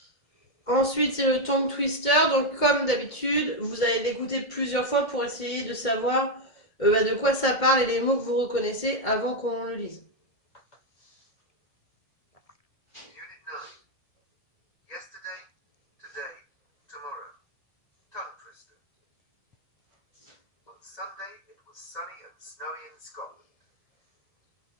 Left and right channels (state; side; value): late; right; 1.7 ms